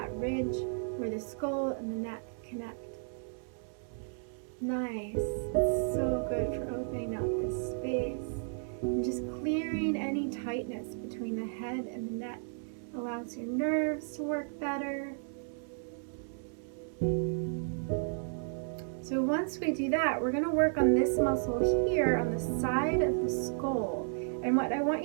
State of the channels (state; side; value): silent; left; digital silence